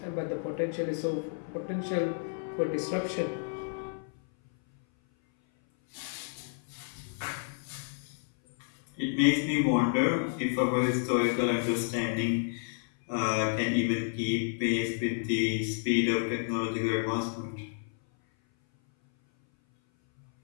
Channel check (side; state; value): right; silent; 57 dB below the other